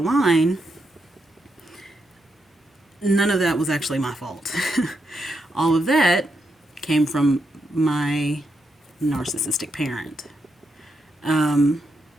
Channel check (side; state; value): both; normal; correlation 0.82